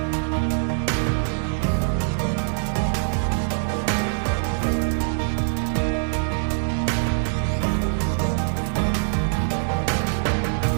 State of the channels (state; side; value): silent; left; digital silence